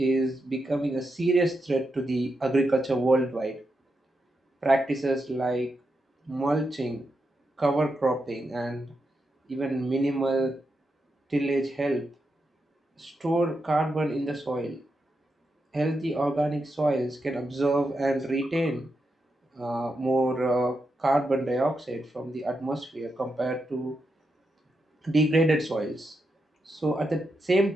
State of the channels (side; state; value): both; normal; correlation 0.85